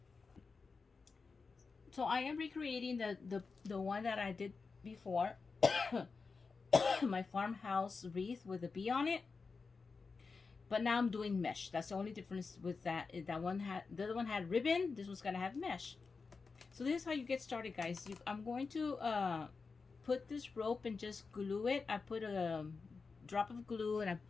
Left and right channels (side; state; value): right; quieter; 4.6 dB